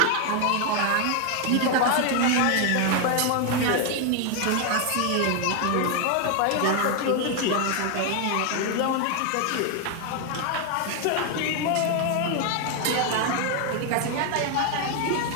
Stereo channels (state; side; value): different; both; correlation 0.01